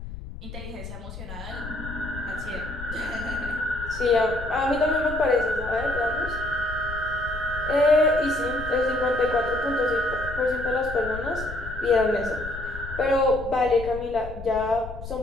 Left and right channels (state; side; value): noise; left; rumble, 11 dB below the sound